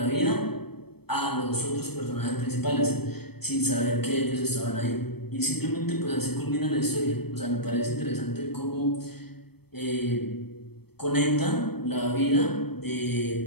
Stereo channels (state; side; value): late; right; 0.97 ms